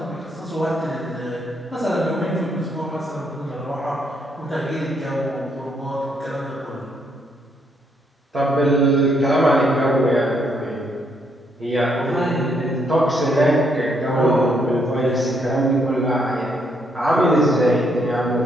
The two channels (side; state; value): both; normal; correlation 0.74